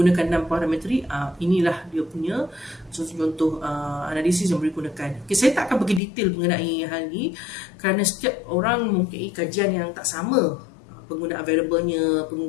6 parametrik, inilah dia punya contoh analisis yang boleh digunakan. Okey, saya tak akan pergi detail mengenai hal ni kerana setiap orang mempunyai kajian yang tak sama, penggunaan variabelnya,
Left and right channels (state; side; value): drops out; right; at 6.0 s